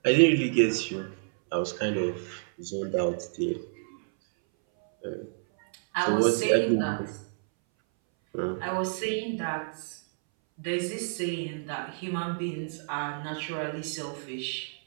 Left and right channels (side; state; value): left; silent; 58 dB below the other